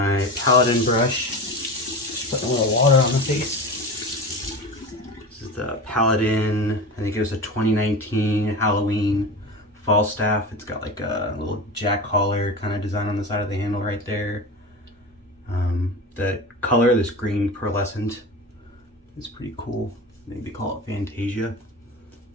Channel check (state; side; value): normal; both; correlation 0.28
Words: Paladin brush. Just putting a little water on the face. This is the Paladin, I think it was a 2019 Halloween Falstaff. It's got like a little jack collar kind of design on the side of the handle right there. The color, this green pearlescent, is pretty cool. Maybe call it Fantasia.